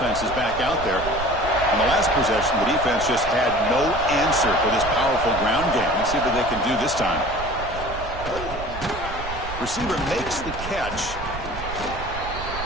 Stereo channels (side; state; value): right; noise; rumble, 10 dB below the sound